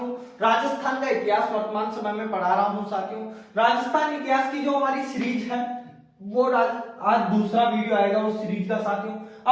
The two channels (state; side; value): identical; both; correlation 1.00